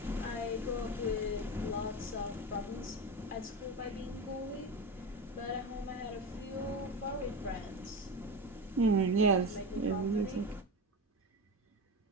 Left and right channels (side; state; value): both; normal; correlation 0.22